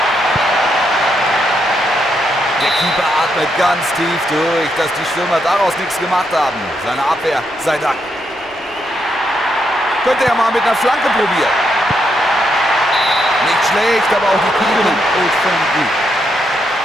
Der Keeper atmet ganz tief durch, dass die Stürmer daraus nichts gemacht haben. Seine Abwehr sei Dank. Könnte er mal mit einer Flanke probieren. Nicht schlecht, aber auch die Kühlung ist schon gut.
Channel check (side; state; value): right; noise; hum, 28 dB below the sound